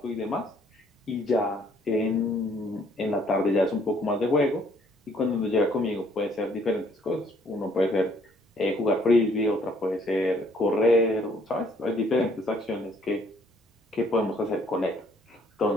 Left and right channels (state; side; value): normal; both; correlation 0.63